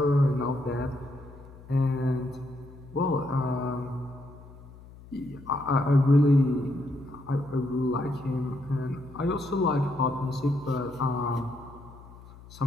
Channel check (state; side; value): noise; left; hum, 19 dB below the sound